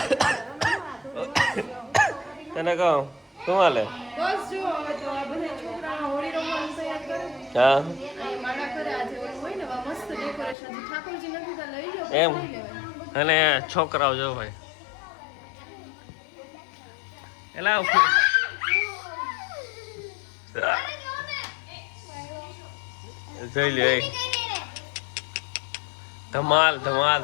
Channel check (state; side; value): drops out; right; at 10.6 s